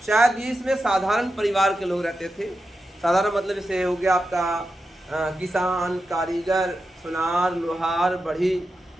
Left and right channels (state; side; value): normal; both; correlation 0.90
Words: शायद इसमें साधारण परिवार के लोग रहते थे। साधारण मतलब जैसे हो गया आपका किसान, कारीगर, सुनार, लोहार, बढ़ी,